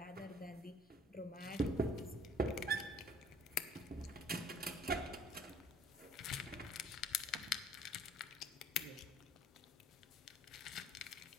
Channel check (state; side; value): normal; both; correlation 0.54